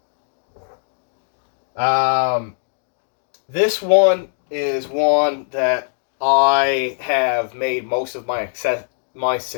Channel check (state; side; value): silent; right; digital silence